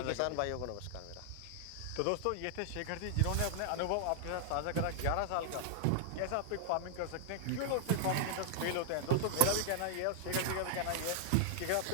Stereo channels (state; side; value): different; both; correlation -0.01